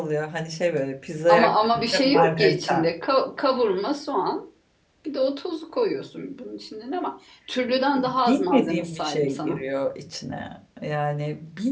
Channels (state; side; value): identical; both; correlation 1.00